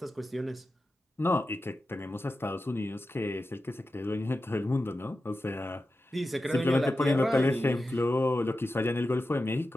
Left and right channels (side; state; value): both; normal; correlation 0.92